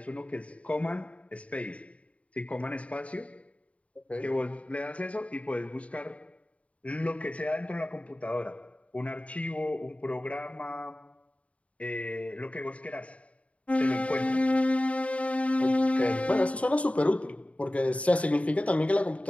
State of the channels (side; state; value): right; late; 0.065 ms